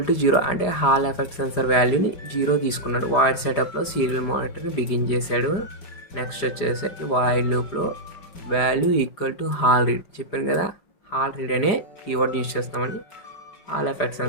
టు 0 అంటే హాల్ ఎఫెక్ట్ సెన్సార్ వాల్యూని 0 తీసుకున్నాడు. వాయిడ్ సెటప్లో సీరియల్ మానిటర్ని బిగిన్ చేశాడు. నెక్స్ట్ వచ్చేసరికి వాయిడ్ లూప్లో value equal to hall read చెప్పాను కదా, హాల్ రీడ్ అనే కీవర్డ్ యూజ్ చేస్తామని హాల్ ఎఫెక్ట్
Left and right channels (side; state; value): right; late; 5.0 ms